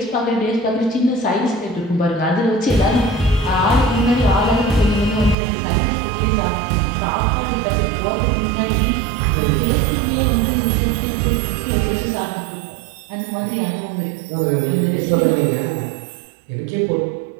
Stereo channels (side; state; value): left; drops out; at 5.4 s